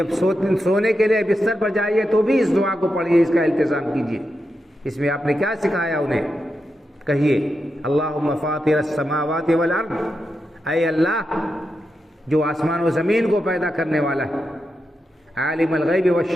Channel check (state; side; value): normal; both; correlation 0.87